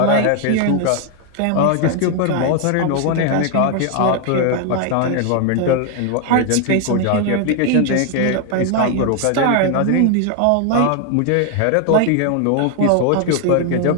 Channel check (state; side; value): different; both; correlation 0.00